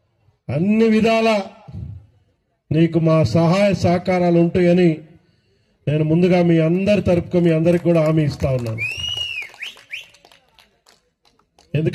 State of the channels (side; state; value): both; identical; correlation 1.00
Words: అన్ని విధాల నీకు మా సహాయ సహకారాలు ఉంటాయని నేను ముందుగా మీ అందరి తరపున మీ అందరికి కూడా హామీ ఇస్తా ఉన్నాను.